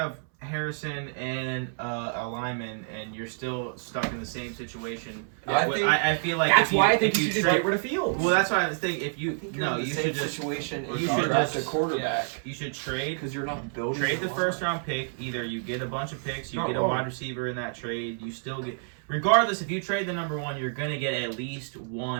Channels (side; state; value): left; silent; 59 dB below the other